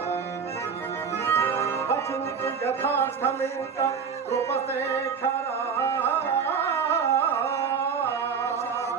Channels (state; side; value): quieter; left; 6.2 dB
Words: వచింతు యథార్థమింక కృపశేఖరా